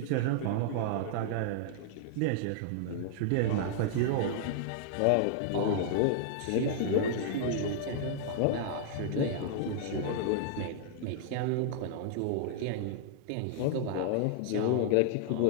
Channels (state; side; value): different; both; correlation -0.01